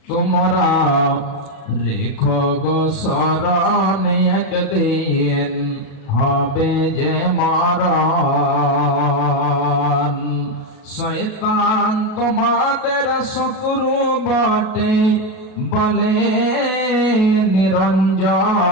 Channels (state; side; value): late; right; 37 ms